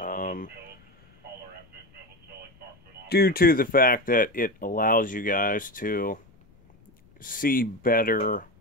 Due to the fact that it allows you guys to see better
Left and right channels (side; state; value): left; noise; rumble, 29 dB below the sound